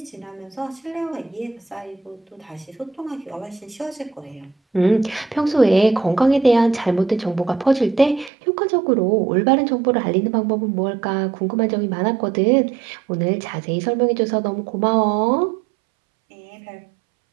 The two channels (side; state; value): left; drops out; at 8.3 s